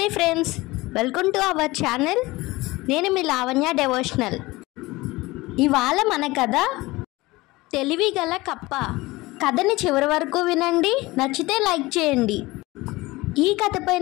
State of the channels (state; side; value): quieter; right; 20.7 dB